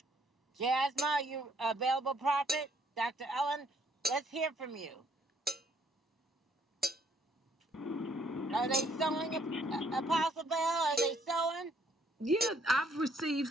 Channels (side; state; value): both; normal; correlation 0.67